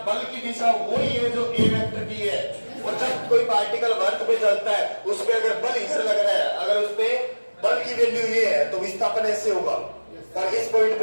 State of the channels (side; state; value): both; inverted; correlation -1.00